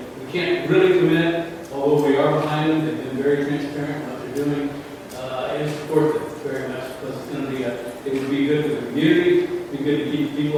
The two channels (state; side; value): identical; both; correlation 1.00